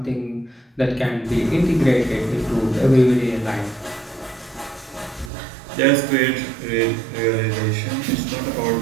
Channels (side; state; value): left; drops out; at 5.3 s